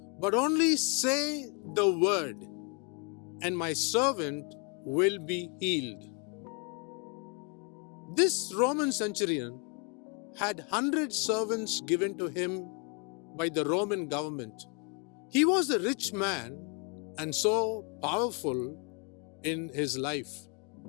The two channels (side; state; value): right; quieter; 33.3 dB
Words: but only say the word, and my servant will be healed." This Roman centurion had 100 servants given to him by the Roman government. He was a rich man and so powerful in his life.